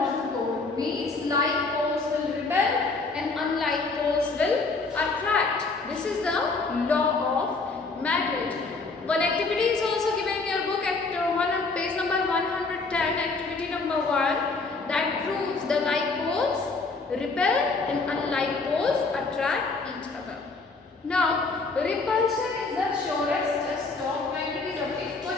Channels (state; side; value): quieter; right; 3.9 dB